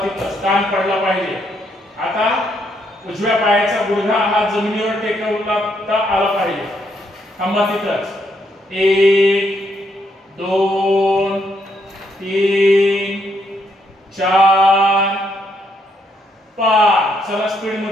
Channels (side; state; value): both; normal; correlation 0.74